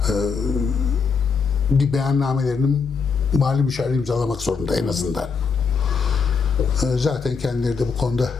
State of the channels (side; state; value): right; quieter; 5.4 dB